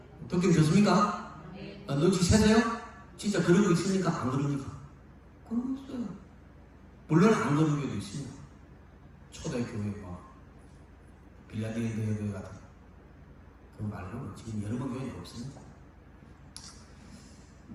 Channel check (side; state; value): both; identical; correlation 1.00